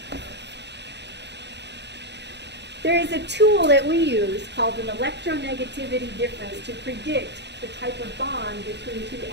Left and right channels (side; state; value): left; late; 0.50 ms